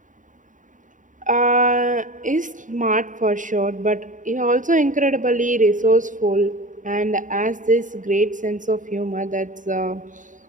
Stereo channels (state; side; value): late; left; 0.37 ms